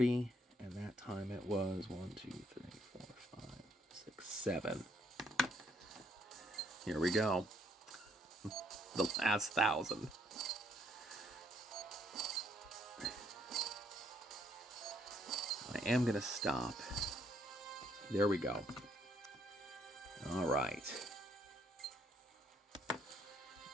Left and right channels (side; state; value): both; normal; correlation 0.70